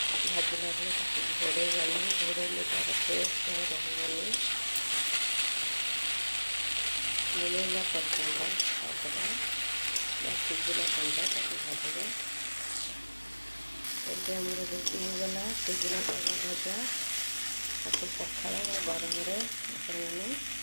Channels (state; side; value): inverted; both; correlation -1.00